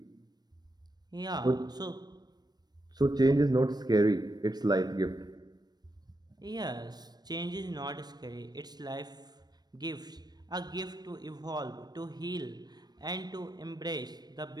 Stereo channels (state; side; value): late; left; 0.19 ms